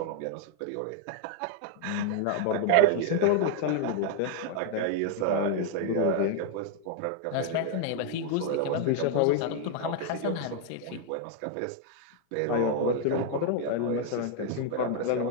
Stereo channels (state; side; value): different; both; correlation 0.00